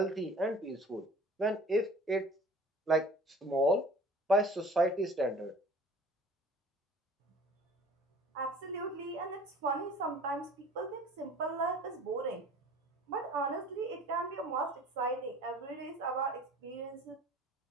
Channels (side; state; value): both; normal; correlation 0.46